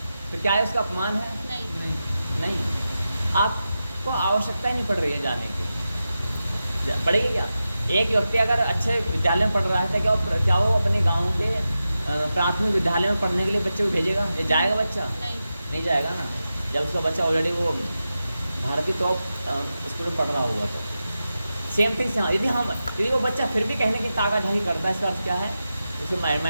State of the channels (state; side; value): inverted; both; correlation -0.91